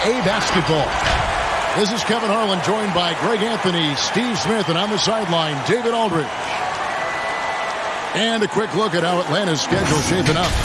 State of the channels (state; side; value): identical; both; correlation 1.00